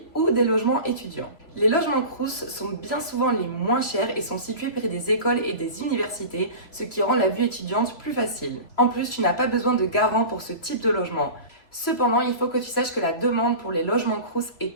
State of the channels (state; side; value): late; right; 3.0 ms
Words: ou des logements étudiants. Les logements Crous sont bien souvent les moins chers et sont situés près des écoles et des universités, ce qui rend la vie étudiante plus facile. En plus, tu n'as pas besoin de garant pour ce type de logement. Cependant, il faut que tu saches que la demande pour les logements Crous